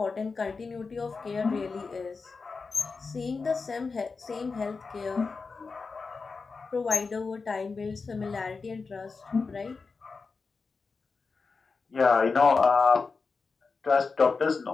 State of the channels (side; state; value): right; quieter; 4.5 dB